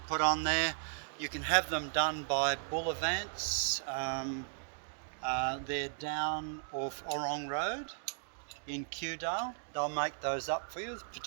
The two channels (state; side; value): silent; left; digital silence